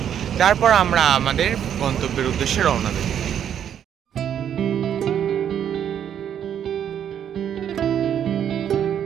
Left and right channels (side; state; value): left; quieter; 9.3 dB